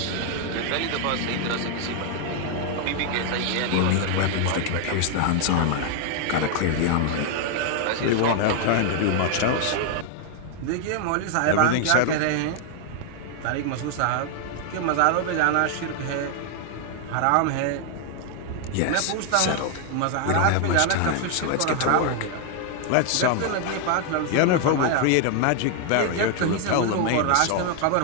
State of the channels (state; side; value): different; both; correlation 0.00